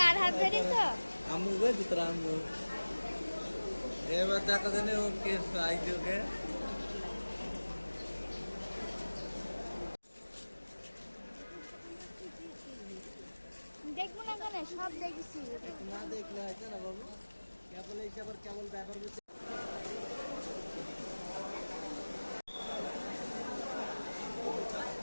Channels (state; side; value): inverted; both; correlation -1.00